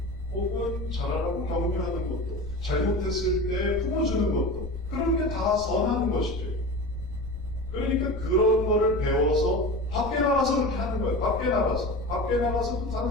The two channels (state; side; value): noise; left; rumble, 12 dB below the sound